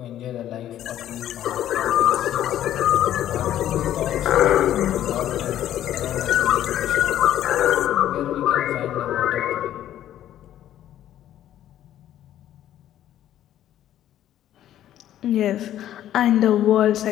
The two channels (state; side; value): quieter; right; 11.9 dB